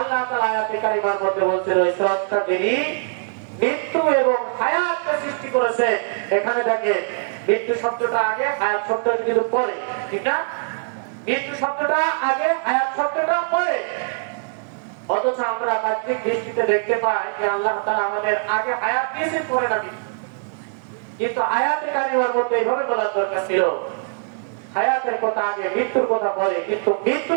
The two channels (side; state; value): left; silent; 64 dB below the other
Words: তাআলা আয়াতে কারিমার মধ্যে বলছেন ওই স্রষ্টা যিনি মৃত্যু এবং হায়াতকে সৃষ্টি করেছে। এখানে দেখেন মৃত্যু শব্দটা আগে, হায়াত শব্দটা কিন্তু পরে, ঠিক না? মৃত্যু শব্দটা আগে, হায়াত শব্দটা পরে। অথচ আমরা বাহ্যিক দৃষ্টিতে দেখতে পাই যে আল্লাহ তাআলা আমাদের আগে হায়াত দিয়েছেন, পরে না মৃত্যু। কিন্তু আয়াতে কারিমার মধ্যে এইভাবে বলার দরকার ছিল হায়াতের কথা আগে, মৃত্যুর কথা পরে। কিন্তু